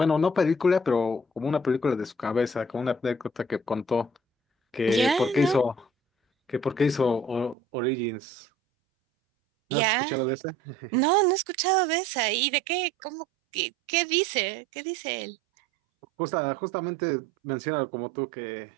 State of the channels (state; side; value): drops out; left; at 7.6 s